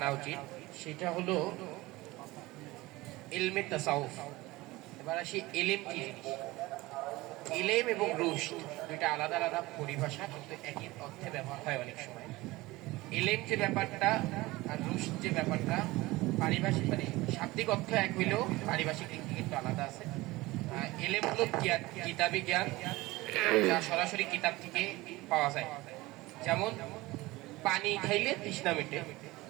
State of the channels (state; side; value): quieter; left; 20.2 dB